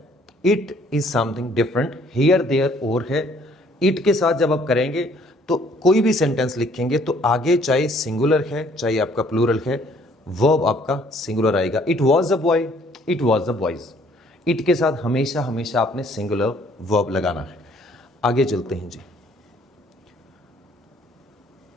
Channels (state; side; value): normal; both; correlation 0.61